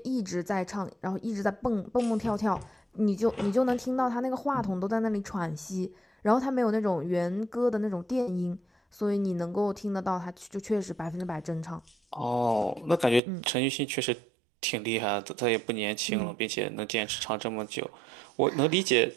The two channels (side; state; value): left; drops out; at 13.2 s